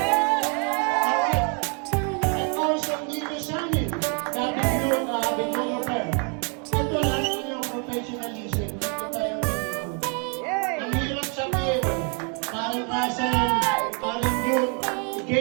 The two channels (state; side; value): quieter; left; 38.4 dB